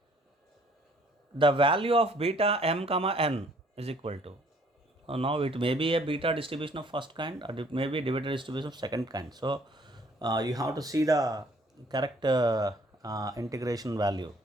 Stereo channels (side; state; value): both; normal; correlation 0.60